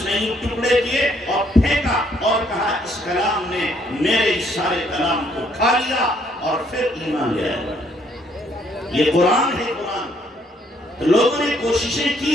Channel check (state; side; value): normal; both; correlation 0.67